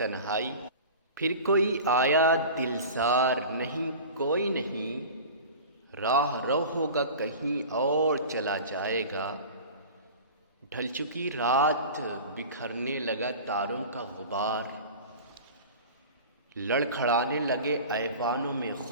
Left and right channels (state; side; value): inverted; both; correlation -0.36